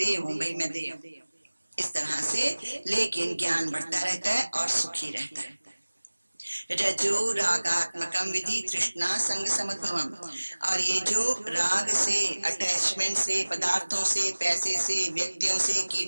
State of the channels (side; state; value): both; inverted; correlation -1.00